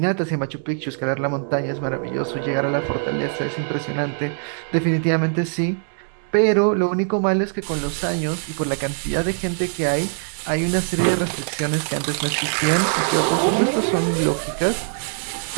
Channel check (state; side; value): silent; left; 64 dB below the other